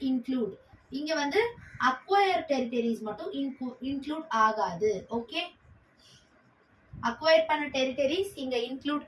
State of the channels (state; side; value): identical; both; correlation 1.00